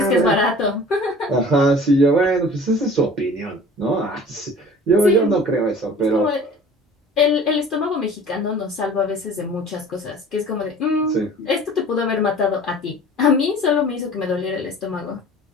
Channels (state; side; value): normal; both; correlation 0.45